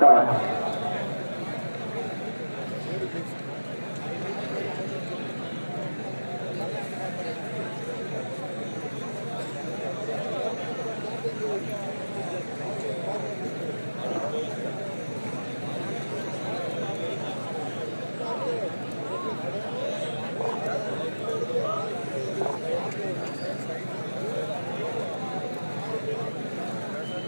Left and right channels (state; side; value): inverted; both; correlation -1.00